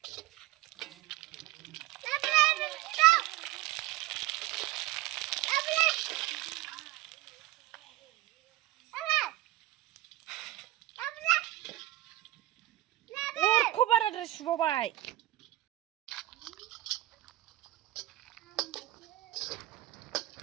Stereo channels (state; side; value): quieter; left; 16.7 dB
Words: Kobar ada subabai.